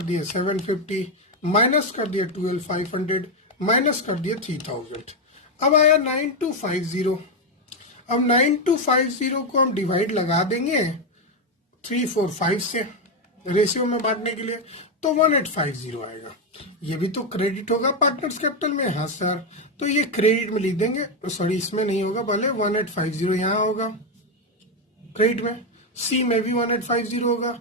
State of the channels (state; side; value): normal; both; correlation 0.06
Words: दिए 750, माइनस कर दिए 12,500, माइनस कर दिए 3,000। अब आया 9250। अब 9250 को हम डिवाइड लगा देंगे 345 से रेशियो में बांटने के लिए, तो 1850 आएगा। ये भी तो क्रेडिट होगा पार्टनर्स कैपिटल में। हाँ सर, तो ये क्रेडिट में लिख देंगे, सॉरी इसमें नहीं होगा, भले 1850 यहाँ होगा क्रेडिट में, सी में भी 1850 होगा,